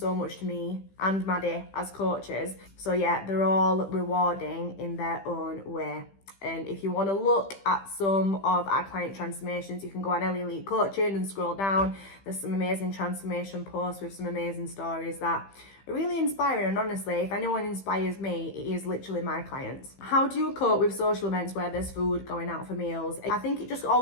much to me and Maddie as coaches. So yeah, they're all rewarding in their own way. And if you want to look at some of our client transformations, you can go on Elite Coaching and scroll down. There's some amazing transformation posts with some amazing stories that are really inspiring. And honestly, if anyone inspires me, it is literally my clients. How do you cope with social events where there's food, going out for meals? I think it just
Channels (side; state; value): right; late; 15 ms